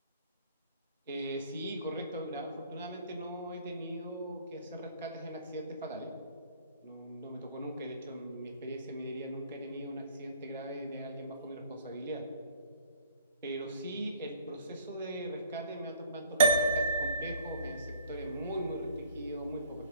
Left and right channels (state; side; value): inverted; both; correlation -0.55